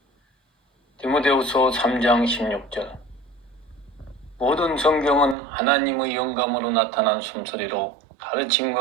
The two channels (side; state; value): left; drops out; at 5.4 s